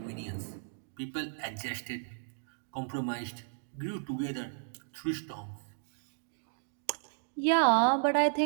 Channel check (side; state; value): left; silent; digital silence